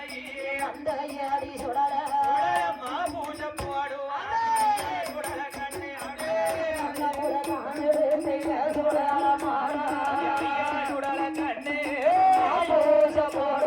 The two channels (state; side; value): identical; both; correlation 1.00